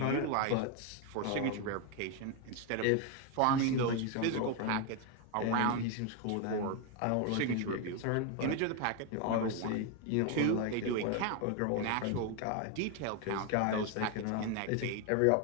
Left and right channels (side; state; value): both; different; correlation 0.01